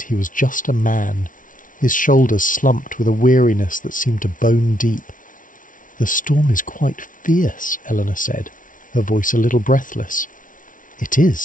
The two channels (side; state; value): right; late; 0.38 ms